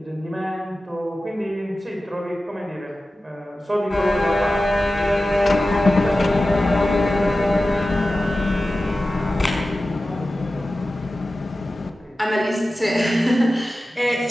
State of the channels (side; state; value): both; normal; correlation 0.95